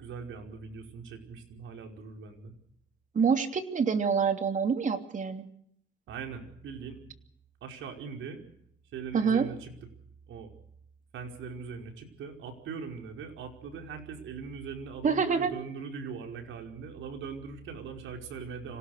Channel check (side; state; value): left; quieter; 5.5 dB